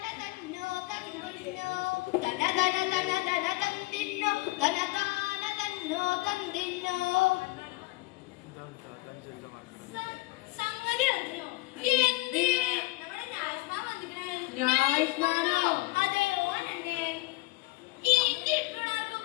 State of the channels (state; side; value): quieter; right; 22.0 dB